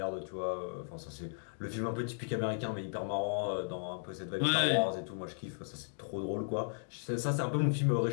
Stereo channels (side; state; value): right; silent; digital silence